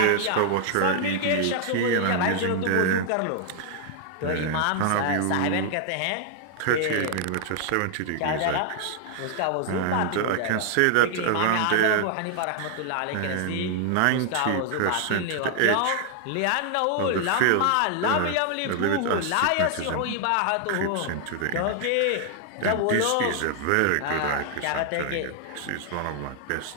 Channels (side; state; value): both; different; correlation 0.00